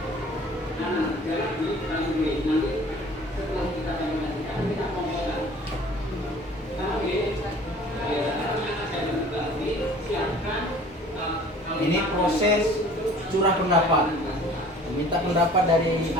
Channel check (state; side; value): normal; both; correlation 0.49